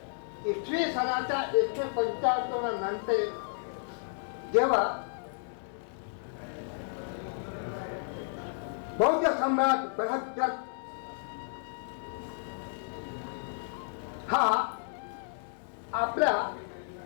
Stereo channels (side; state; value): right; silent; digital silence